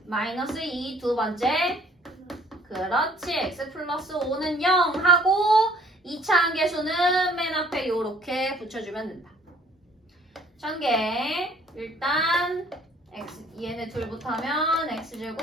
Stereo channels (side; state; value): both; normal; correlation 0.57